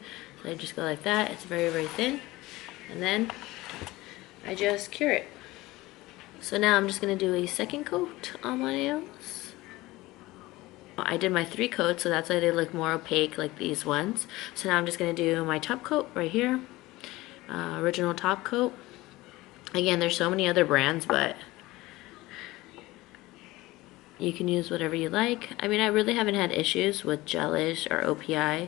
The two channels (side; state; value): right; quieter; 19.3 dB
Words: So I just go like that. It's very, very thin. And then I just cure it. So now I'm just gonna do a second coat on my nails. I did my 3 coats, so that's why they look more opaque like these ones. So now I'm just gonna do my top coat right here. Original top coat. Again, there's so many other brands, but you can use whatever you like. I mean, I really haven't had issues with gelish or OPI.